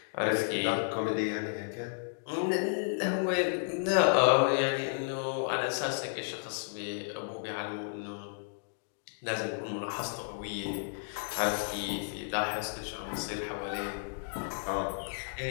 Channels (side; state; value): right; silent; digital silence